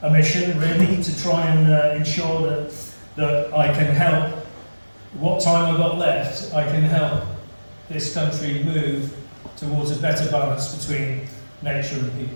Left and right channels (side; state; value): both; inverted; correlation -1.00